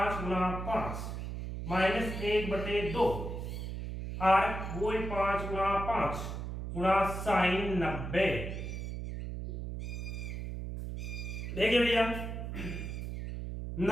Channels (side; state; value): right; noise; hum, 5 dB below the sound